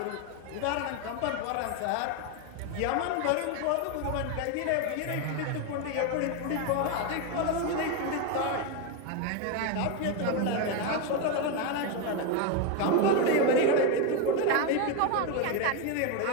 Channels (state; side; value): different; both; correlation 0.02